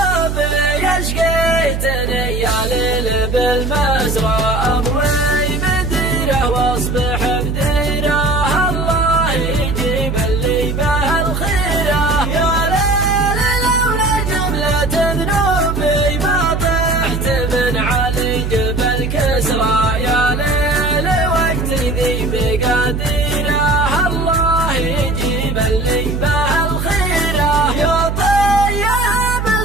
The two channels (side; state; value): right; noise; hum, 2 dB below the sound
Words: اشقيتني يا ليل بالمزرعة اموي مديره واصبح بديره الله يجيب اللي به الخير. يا ليل لولا جملة ذنوبي ما طحت من علي جبل كسرى يا ليل وقت ذي بقديره الله يجيب اللي به الخير. يا طيب